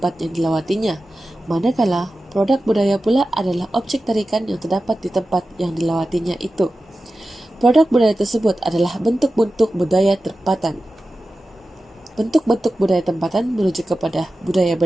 yang dilawatinya, manakala produk budaya pula adalah objek tarikan yang terdapat di tempat yang dilawatinya itu. Produk budaya tersebut adalah bentuk-bentuk budaya tempatan. Bentuk-bentuk budaya tempatan merujuk kepada budaya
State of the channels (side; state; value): both; normal; correlation 0.94